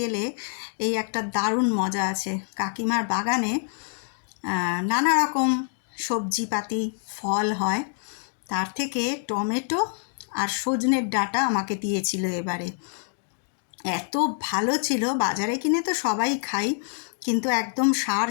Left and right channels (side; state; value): right; silent; 60 dB below the other